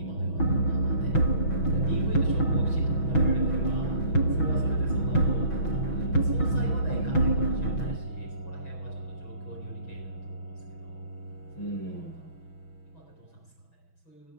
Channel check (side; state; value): right; late; 6.1 ms